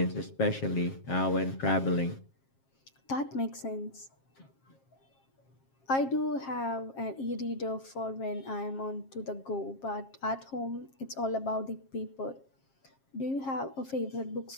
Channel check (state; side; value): late; right; 7.4 ms